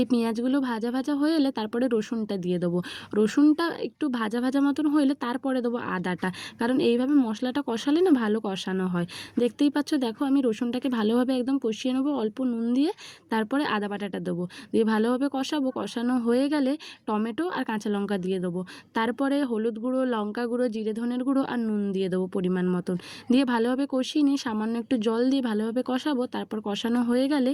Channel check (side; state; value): both; identical; correlation 1.00